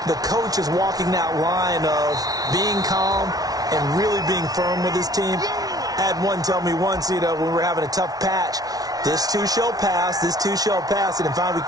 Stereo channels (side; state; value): left; late; 0.18 ms